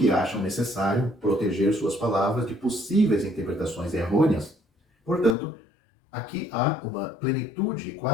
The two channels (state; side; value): drops out; right; at 5.4 s